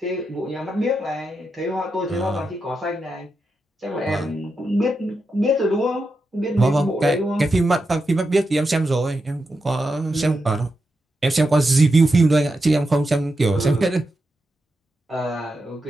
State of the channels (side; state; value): both; normal; correlation 0.87